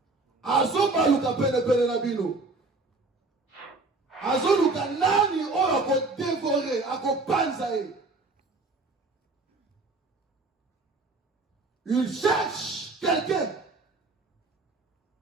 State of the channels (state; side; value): quieter; left; 3.5 dB